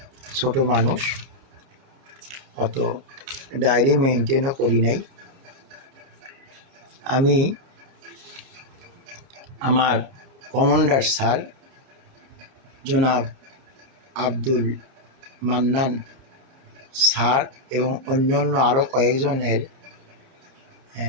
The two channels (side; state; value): left; late; 29 ms